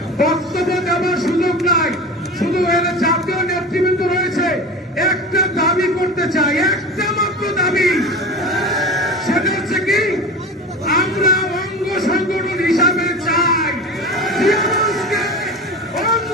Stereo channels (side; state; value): both; normal; correlation 0.31